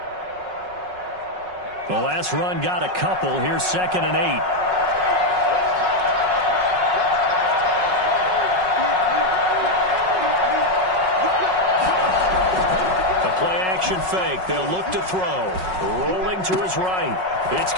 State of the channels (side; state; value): left; late; 5.4 ms